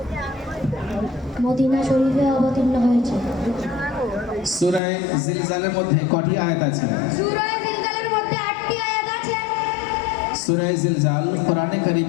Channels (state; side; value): drops out; right; at 4.8 s